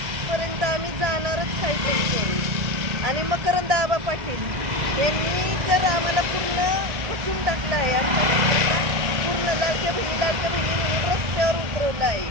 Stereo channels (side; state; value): left; late; 2.0 ms